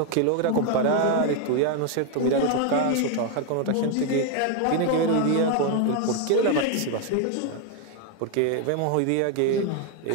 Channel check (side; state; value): both; different; correlation 0.01